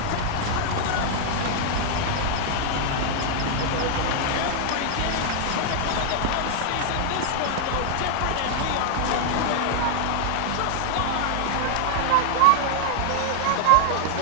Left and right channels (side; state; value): both; different; correlation 0.00